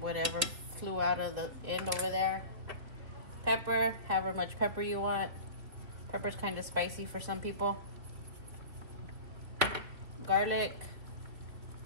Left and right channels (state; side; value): late; left; 3.4 ms